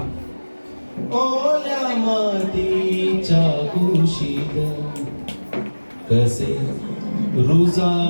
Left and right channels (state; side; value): inverted; both; correlation -1.00